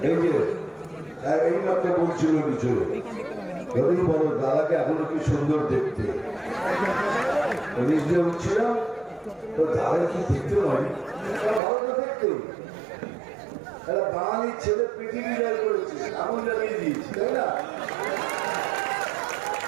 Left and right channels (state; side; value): drops out; left; at 11.6 s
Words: এই মাত্র বলছিল কিছু, যদি বলো দাদাকে এখনো কি সুন্দর দেখতে, নিজে উঠছিলাম তো দাদা কি দেখতে নয়, ভালো তো দেখতে। এরা বাঙালির ছেলে পৃথিবী জয় করেছে, এমন জানিয়ে দিয়েছি, তাই না?